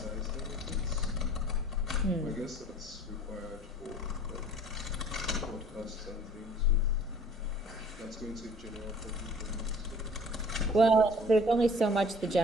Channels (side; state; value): both; normal; correlation 0.50